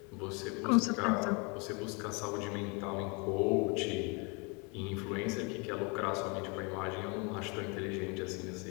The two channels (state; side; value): quieter; right; 31.5 dB